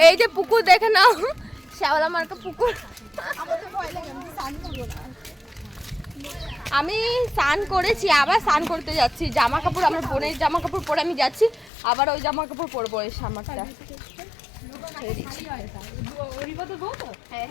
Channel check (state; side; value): drops out; right; at 11.7 s